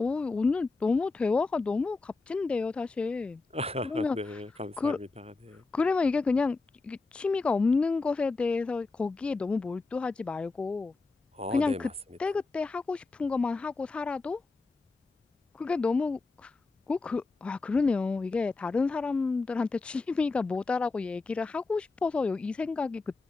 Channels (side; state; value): right; quieter; 3.8 dB